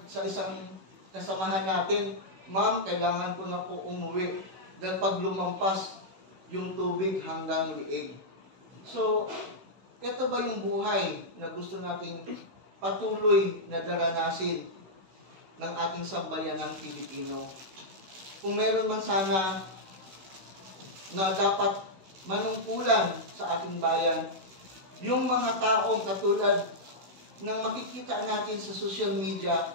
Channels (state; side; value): late; left; 16 ms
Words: sa isang kasamahan natin, ma'am, kailangan ko na po umuwi dahil pag lumampas yung tubig hanggang liig. So, ito ba yung buhay na gusto nating patuloy na daranasin ng ating sambayanang Pilipino? Kung meron man sana na dapat manungkulan sa ating bayan, yung mga taong katulad ng makikita natin sa social media